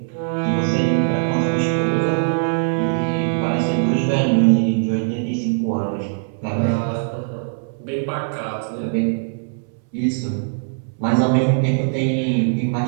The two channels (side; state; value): left; silent; 65 dB below the other